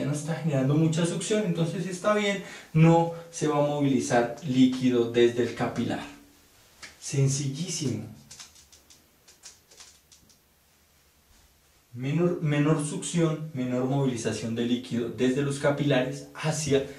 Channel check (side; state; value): both; identical; correlation 1.00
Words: no está generando mucha succión, entonces está bien, no se va a movilizar líquido desde el capilar. Sencillísimo. Menor succión, menor movilización de líquido desde los capilares hacia